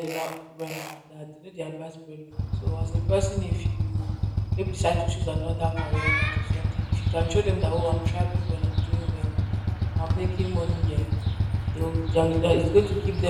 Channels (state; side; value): identical; both; correlation 1.00